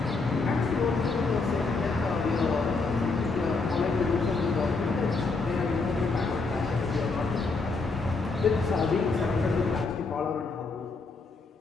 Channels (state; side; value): quieter; right; 4.0 dB